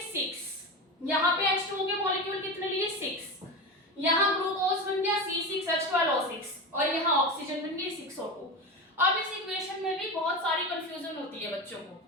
6। यहाँ पे H2O के मॉलिक्यूल कितने लिए? 6। यहाँ ग्लूकोज बन गया C6H12O6 और यहाँ ऑक्सीजन बन गई 6O2। अब इस इक्वेशन में भी बहुत सारी कंफ्यूजन होती है बच्चों को,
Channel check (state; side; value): normal; both; correlation 0.22